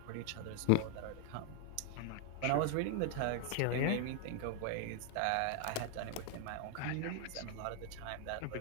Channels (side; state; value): both; different; correlation 0.00